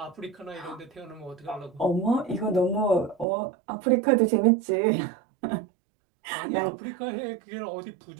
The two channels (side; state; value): left; drops out; at 3.2 s